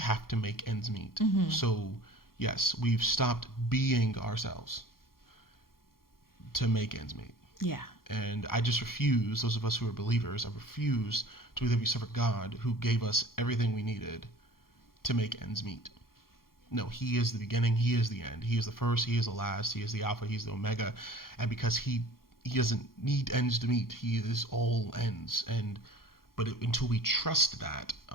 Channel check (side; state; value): right; late; 0.92 ms